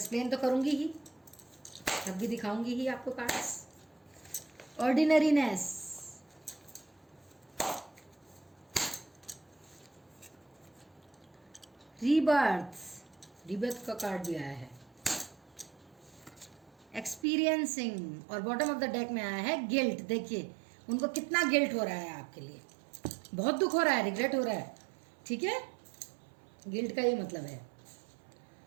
तो करूँगी ही, तब भी दिखाऊंगी ही आपको कार्ड्स। ऑर्डिनरीनेस, रीबर्थ, रीबर्थ का कार्ड भी आया है। एक्सपीरियंसिंग, और बॉटम ऑफ द डेक में आया है गिल्ट। देखिए उनको कितना गिल्ट हो रहा है आपके लिए, बहुत दुख हो रहा है, रिग्रेट हो रहा है, ठीक है। गिल्ट का ये मतलब है।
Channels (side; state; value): left; drops out; at 17.2 s